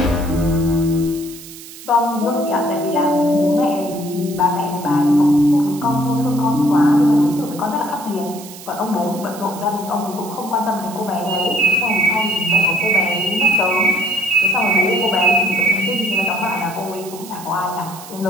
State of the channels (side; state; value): right; noise; hiss, 16 dB below the sound